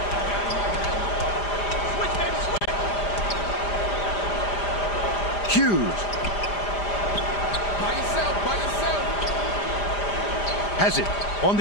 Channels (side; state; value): right; late; 5.0 ms